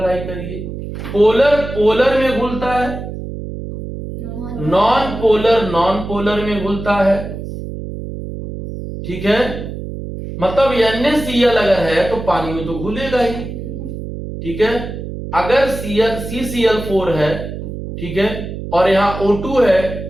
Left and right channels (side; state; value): right; noise; hum, 8 dB below the sound